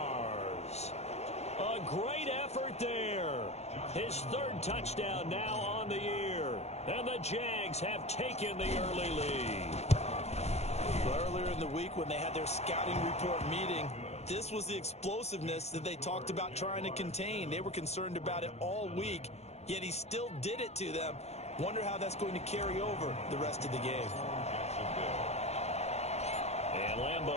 A great effort there. His 3rd touchdown now on the year. And the Jags have taken the early lead. Earlier in the week when they had their scouting report meeting, this was the explosiveness that they talked about trying to contain. They were concerned about it all week, yet he still did it to them. Wonder how that's going to carry over the rest of the game. And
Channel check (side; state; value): right; late; 0.31 ms